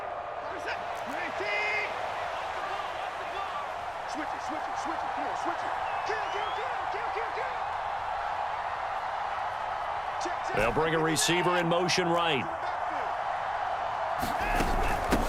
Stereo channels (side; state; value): both; identical; correlation 1.00